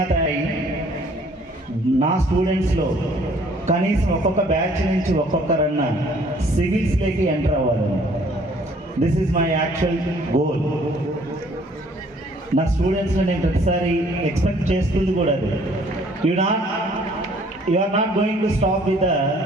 అయ్యి నా స్టూడెంట్స్లో కనీసం ఒక్కొక్క బ్యాచ్ నుంచి ఒక్కొక్కరన్నా సివిల్స్లోకి ఎంటర్ అవ్వాలి. This is my actual goal. నా స్టూడెంట్స్లో నేను ప్రతిసారి ఎక్స్పెక్ట్ చేస్తుంది కూడా అది. You are not going to stop with the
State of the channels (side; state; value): both; normal; correlation 0.59